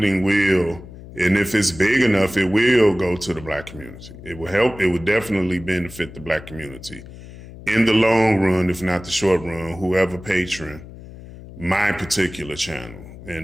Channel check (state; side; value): noise; left; hum, 16 dB below the sound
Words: will, and if it's big enough, it will go to the Black community. It will help, it would definitely benefit the Black community. In the long run, if not the short run, whoever patron my particular channel